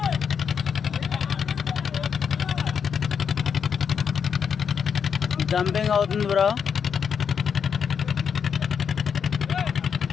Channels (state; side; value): quieter; right; 7.0 dB